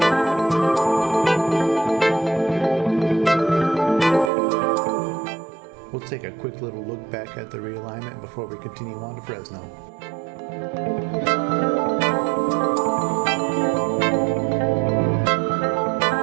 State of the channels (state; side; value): drops out; left; at 4.3 s